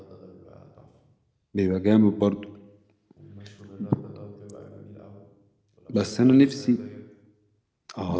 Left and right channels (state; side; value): identical; both; correlation 1.00